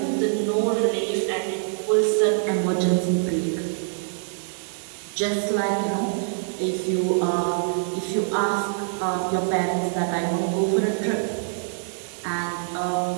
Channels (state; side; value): silent; left; digital silence